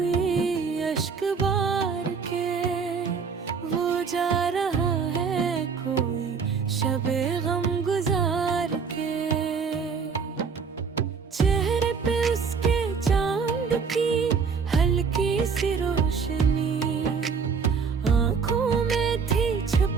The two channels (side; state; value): left; quieter; 5.7 dB